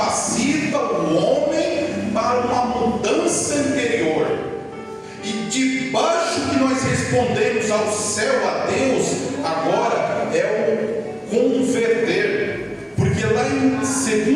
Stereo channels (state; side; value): identical; both; correlation 1.00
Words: o homem para uma mudança interior. E debaixo que nós respondemos ao céu, a Deus, agora é converter, porque lá em